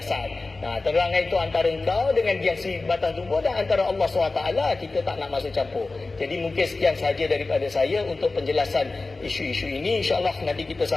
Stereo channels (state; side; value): quieter; right; 3.5 dB